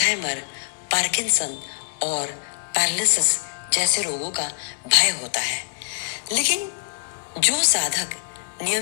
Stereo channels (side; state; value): right; silent; digital silence